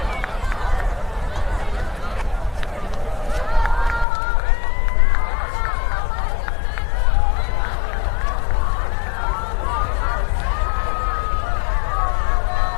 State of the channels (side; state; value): right; drops out; at 4.0 s